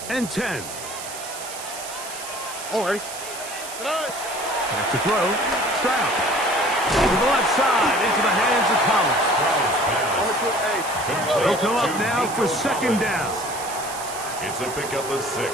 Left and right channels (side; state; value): right; noise; hiss, 10 dB below the sound